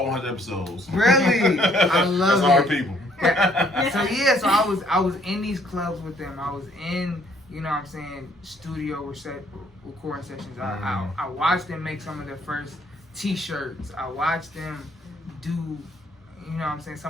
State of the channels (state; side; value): normal; both; correlation 0.64